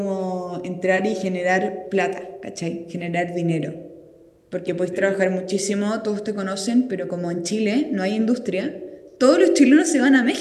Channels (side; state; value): both; identical; correlation 1.00